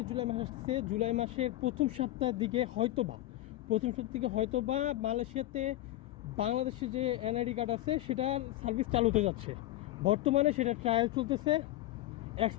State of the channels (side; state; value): right; quieter; 15.3 dB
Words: জুলাই মাস আসছে, জুলাই মাসের প্রথম সপ্তাহের দিকে হয়তোবা মালয়েশিয়াতে বাংলাদেশে যে এনআইডি কার্ড আছে সেটার সার্ভিস চালু হতে যাচ্ছে। বর্তমানে সেটা ট্রায়াল চলতেছে।